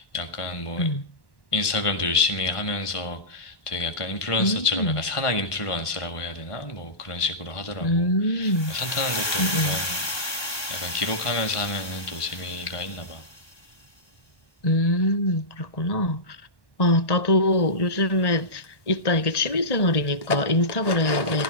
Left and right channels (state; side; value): late; right; 1.3 ms